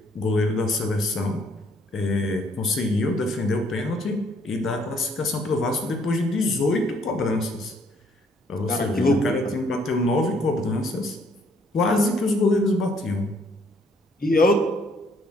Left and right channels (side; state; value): both; normal; correlation 0.65